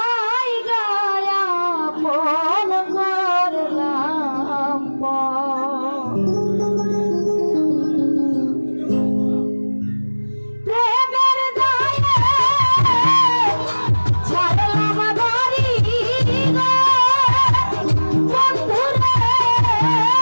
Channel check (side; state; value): both; inverted; correlation -1.00